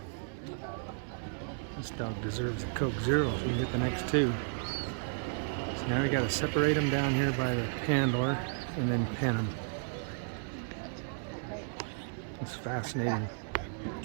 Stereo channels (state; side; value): silent; left; digital silence